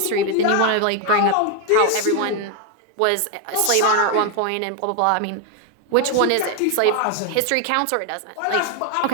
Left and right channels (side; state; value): both; different; correlation 0.01